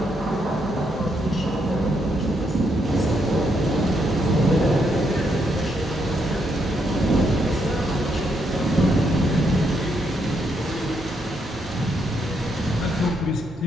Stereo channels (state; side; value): normal; both; correlation 0.77